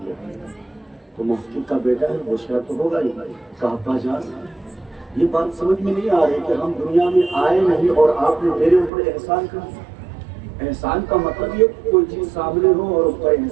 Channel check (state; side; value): drops out; left; at 8.9 s